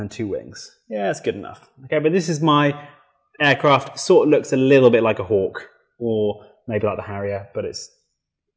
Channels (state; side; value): identical; both; correlation 1.00